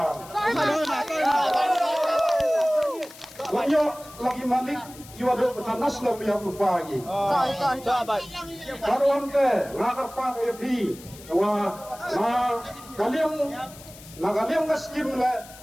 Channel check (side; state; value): left; noise; hiss, 19 dB below the sound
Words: banyak lagi malik jiwa do betanas lam yang lupa lagi karuan ke ngakar pan epi wa na kalian ke skim le